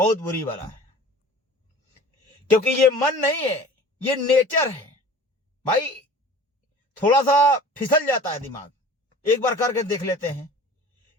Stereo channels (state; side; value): normal; both; correlation 0.43